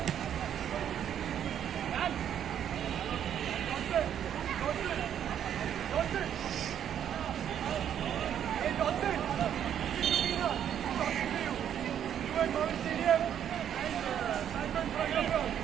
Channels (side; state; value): left; quieter; 9.6 dB